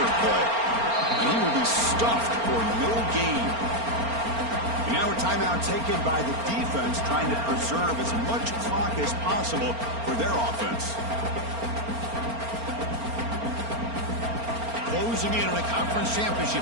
play. And he will be stuffed for no gain. Now a timeout taken by the defense, trying to preserve as much clock as possible for their offense. Closing in on a conference championship,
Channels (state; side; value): late; left; 4.3 ms